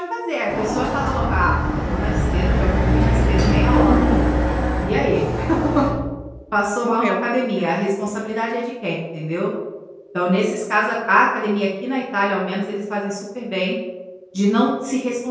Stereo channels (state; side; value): identical; both; correlation 1.00